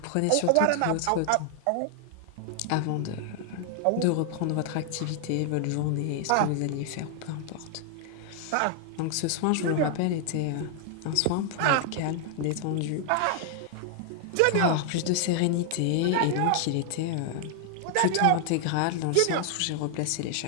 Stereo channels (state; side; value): different; both; correlation 0.00